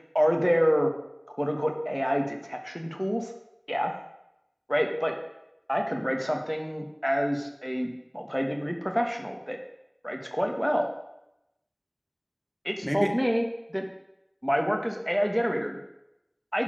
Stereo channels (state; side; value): identical; both; correlation 1.00